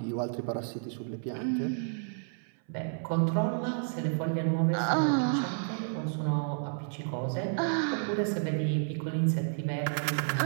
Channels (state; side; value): silent; left; 57 dB below the other